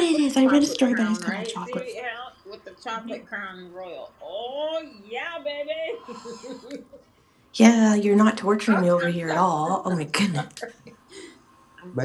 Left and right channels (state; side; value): identical; both; correlation 1.00